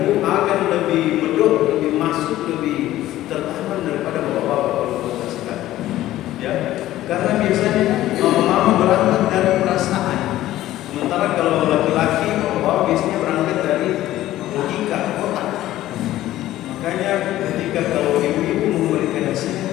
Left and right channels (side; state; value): right; quieter; 14.6 dB